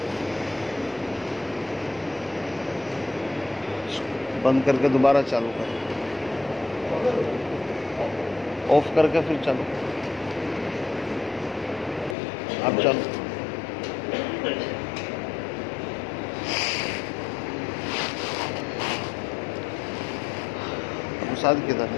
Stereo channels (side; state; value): right; drops out; at 12.2 s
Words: بند کر کے دوبارہ چالو کر، آف کر کے پھر چالو، اب چالو۔ ساتھ کدھر